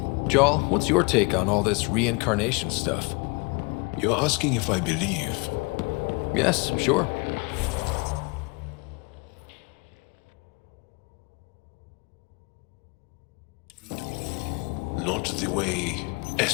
Jarl, what's your take on all this reincarnation stuff? You're asking if I believe? Yes, sure. Not the way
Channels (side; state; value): right; quieter; 29.8 dB